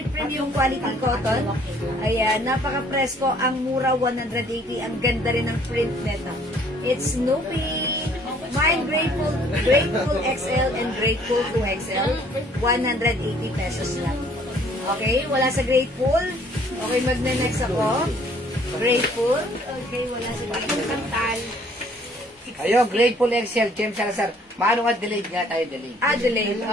premium quality cotton. Ayan, napaka-presko. Ang mura, 180. Ang ganda rin ng print nito. It's Snoopy. Mine Grateful XL and Grateful 2XL. 180 pesos lang. Okay, wala sa Grateful. Okay, magne-next ako. Grateful. Okay, wala sa Grateful. Kantal. Ayun, Grateful XL, James Salazar. Paano nga delayed nga tayo, delayed? Adelaide,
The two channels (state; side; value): normal; both; correlation 0.59